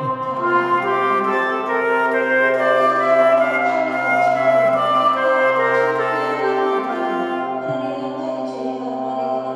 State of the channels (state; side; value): identical; both; correlation 1.00